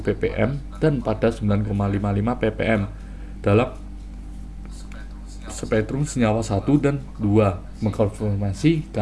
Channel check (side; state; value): both; identical; correlation 1.00